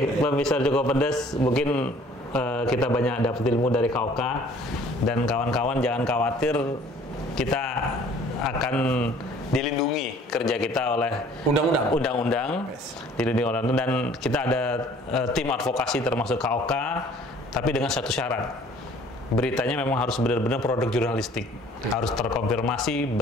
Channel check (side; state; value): both; normal; correlation 0.54